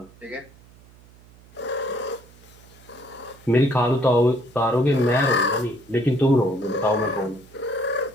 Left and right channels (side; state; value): right; noise; hum, 25 dB below the sound